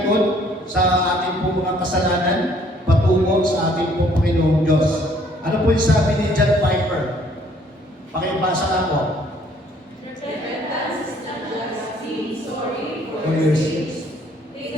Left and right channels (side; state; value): both; normal; correlation 0.62